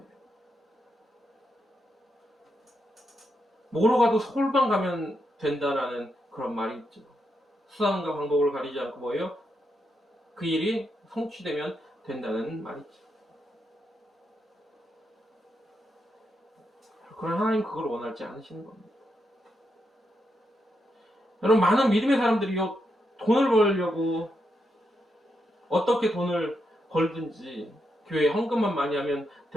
뭐로 가도 서울만 가면 된다라는 그런 말이 있죠. 수단과 방법을 가리지 않고 뭐예요? 그 일이 성취되면 된다는 말이 있죠. 그러나 하나님 그걸 원하지 않으시는 겁니다. 여러분, 많은 믿음의 사람들이요, 돈을 벌려고 어떻게 돈을 벌든지 교회에 헌금만 많이 하면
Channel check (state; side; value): normal; both; correlation 0.82